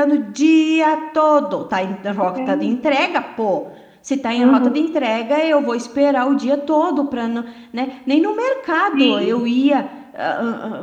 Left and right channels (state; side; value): identical; both; correlation 1.00